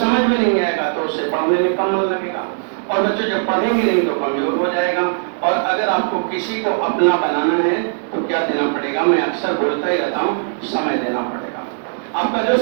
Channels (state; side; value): silent; left; 67 dB below the other